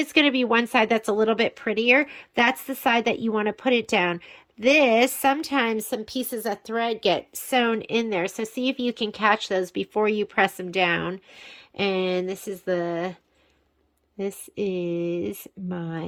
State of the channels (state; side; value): identical; both; correlation 1.00